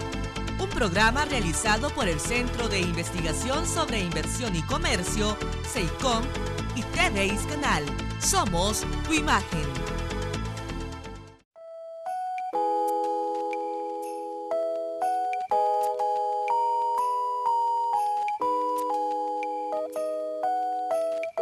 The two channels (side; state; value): both; identical; correlation 1.00